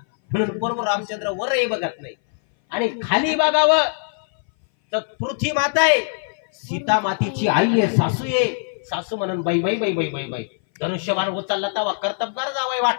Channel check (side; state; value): right; silent; 60 dB below the other